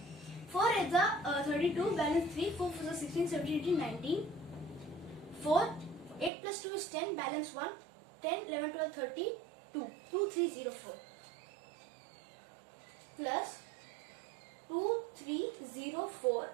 4 is a 32, balance 3. 4 4 is 16, 17, 18, 19. 4. 8 plus 2 is 10, balance 1. 10, 11, 12, 32. 2304. Plus 2304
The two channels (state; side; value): drops out; left; at 6.3 s